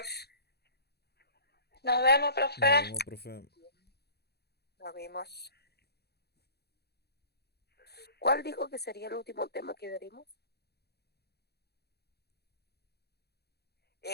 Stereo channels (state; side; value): late; right; 0.47 ms